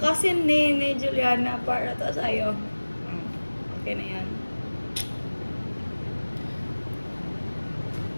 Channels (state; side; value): inverted; both; correlation -1.00